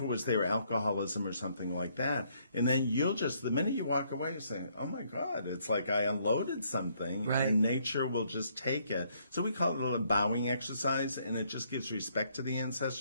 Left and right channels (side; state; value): both; inverted; correlation -0.69